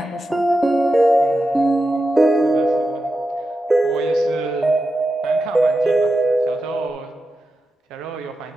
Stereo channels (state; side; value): normal; both; correlation 0.90